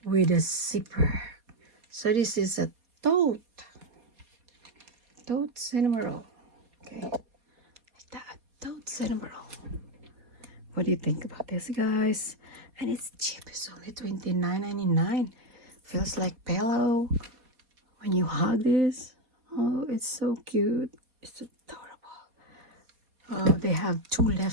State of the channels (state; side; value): late; left; 4.2 ms